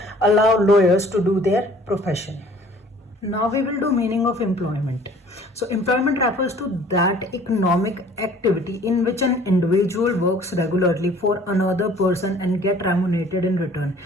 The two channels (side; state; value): both; normal; correlation 0.53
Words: allow lawyers to do their profession. Now we will do meaning of employment. So employment refers to that economic activity in which an individual works regularly for another person and get remunerated in return.